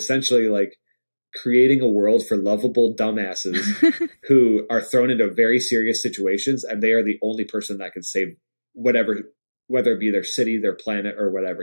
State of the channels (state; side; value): inverted; both; correlation -1.00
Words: like creating a world for lovable dumbasses who are thrown into very serious situations, and they are the only person that can save whatever, whether it be their city, their planet, or whatever,